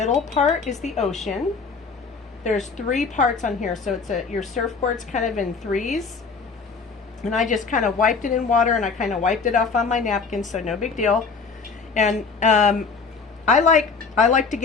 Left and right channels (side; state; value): right; quieter; 4.9 dB